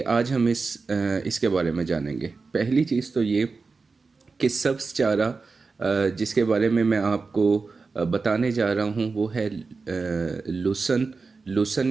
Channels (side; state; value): left; quieter; 4.3 dB